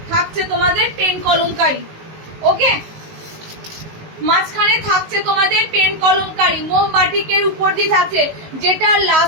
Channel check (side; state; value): left; late; 19 ms